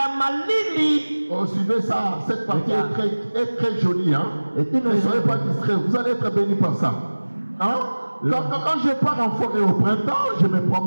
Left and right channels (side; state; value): both; inverted; correlation -1.00